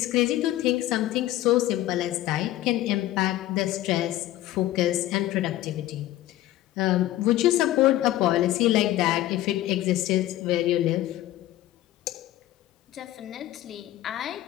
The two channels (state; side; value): quieter; right; 14.8 dB